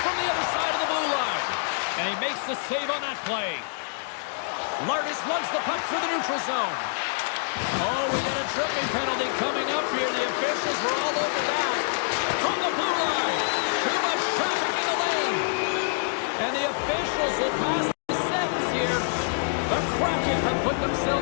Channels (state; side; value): silent; right; digital silence